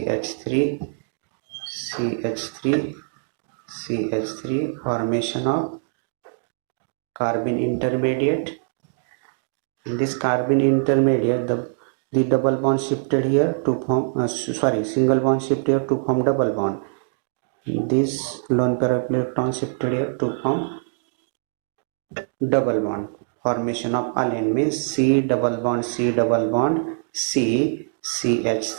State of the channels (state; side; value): silent; left; digital silence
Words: formation of carbon intermediate. In this carbon intermediate, the double bond shifted here to form single bond shifted here to form double bond. This lone pair of electron shifted here to form double bond. Formation of allene means C double bond C